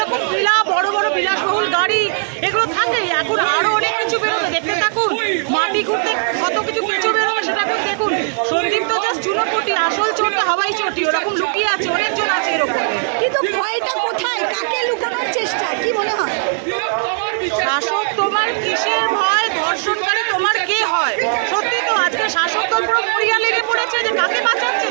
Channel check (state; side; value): silent; left; digital silence